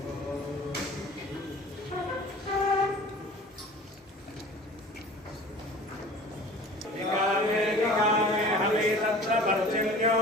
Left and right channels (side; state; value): both; normal; correlation 0.43